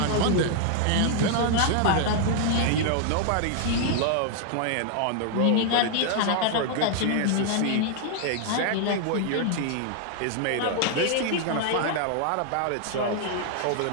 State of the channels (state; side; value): different; both; correlation 0.00